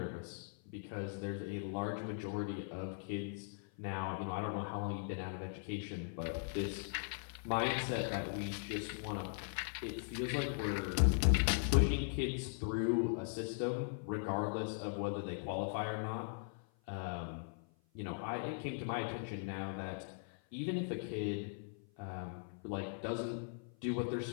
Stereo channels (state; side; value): silent; right; 51 dB below the other